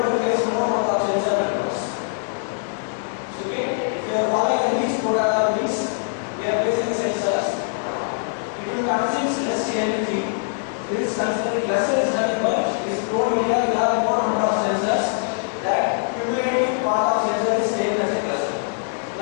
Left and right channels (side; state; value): right; silent; digital silence